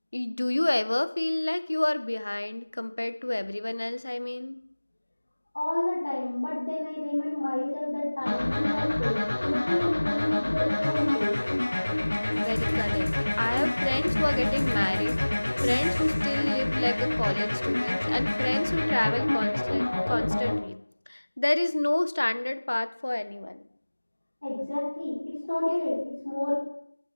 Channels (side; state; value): both; inverted; correlation -1.00